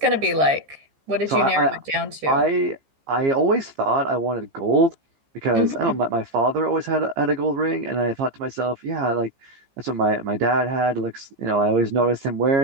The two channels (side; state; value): left; late; 15 ms